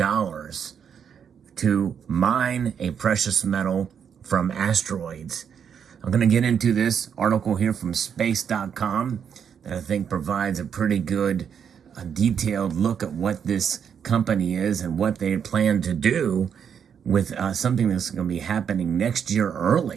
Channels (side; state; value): left; quieter; 7.7 dB